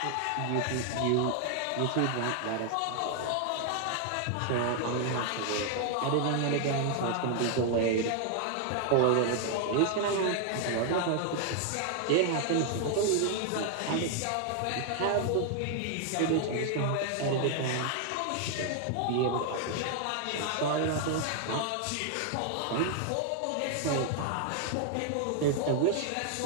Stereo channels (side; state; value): both; different; correlation 0.00